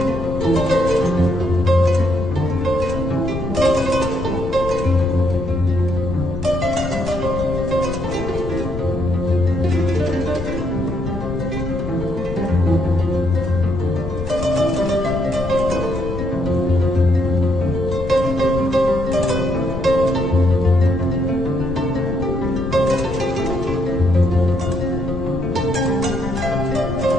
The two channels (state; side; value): noise; left; rumble, 6 dB below the sound